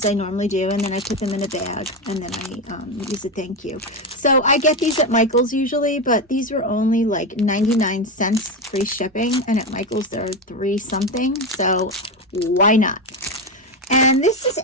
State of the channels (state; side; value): normal; both; correlation 0.14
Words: I normally do, and then I put them in a bag, and then I use a thank you. So I get these at Michael's usually, but these were only like 99 cents free shipping, and at Michael's they're 3 something, so why not? And this is